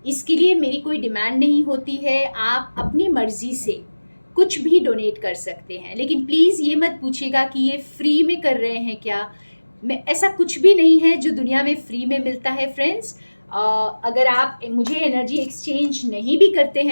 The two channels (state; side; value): inverted; both; correlation -1.00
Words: इसके लिए मेरी कोई डिमांड नहीं होती है, आप अपनी मर्जी से कुछ भी डोनेट कर सकते हैं, लेकिन प्लीज़ ये मत पूछिएगा कि ये फ्री में कर रहे हैं क्या। मैं ऐसा कुछ भी नहीं है जो दुनिया में फ्री में मिलता है फ्रेंड्स। अगर आप मुझे एनर्जी एक्सचेंज नहीं भी करते